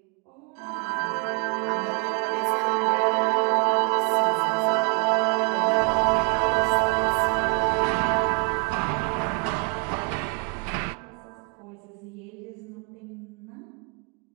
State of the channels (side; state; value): left; quieter; 35.0 dB